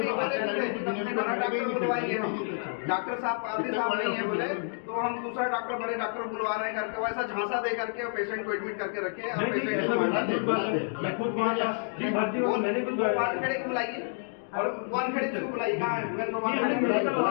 बोले बड़ा डॉक्टर बुलवाएंगे हम, डॉक्टर साहब पारदी साहब नहीं है बोले, तो हम दूसरा डॉक्टर बड़े डॉक्टर बुलवा रहे हैं करके वैसा झांसा दे करके और पेशेंट को एडमिट करके रखे और पेशेंट मैं खुद भर्ती हूँ, मैंने खुद वानखेड़े को बुलाइए और वानखेड़े को बुलाइए। कहाँ है?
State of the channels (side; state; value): right; silent; 57 dB below the other